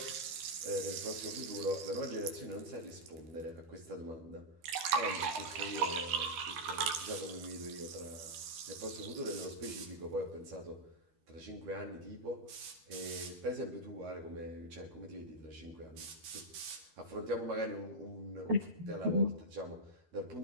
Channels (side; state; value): left; late; 12 ms